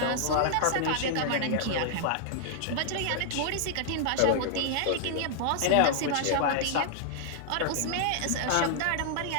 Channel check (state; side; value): different; both; correlation -0.01